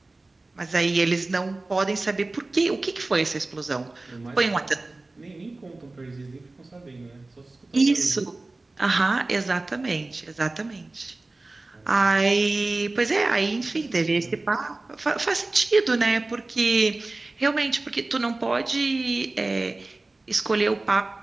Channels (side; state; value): left; quieter; 3.1 dB